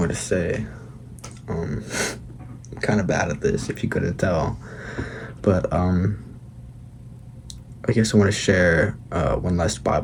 to say. I'm kind of bad at this, if you couldn't tell. But I guess I want to share one last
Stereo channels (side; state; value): both; identical; correlation 1.00